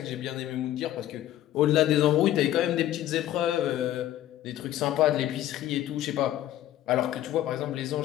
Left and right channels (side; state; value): right; quieter; 13.1 dB